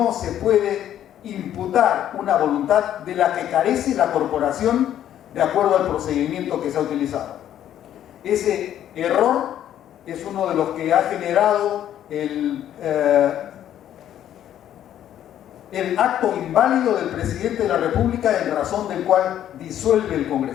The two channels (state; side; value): quieter; right; 11.0 dB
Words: se puede imputar una voluntad de la que carece la corporación de acuerdo al procedimiento que se ha utilizado. Ese error es uno de los que ha generado el acto inválido del presidente de la República, en razón del cual disuelve el